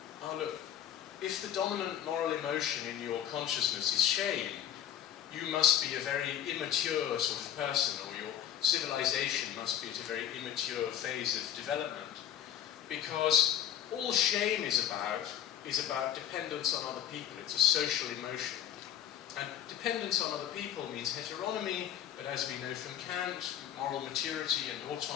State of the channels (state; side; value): quieter; right; 10.3 dB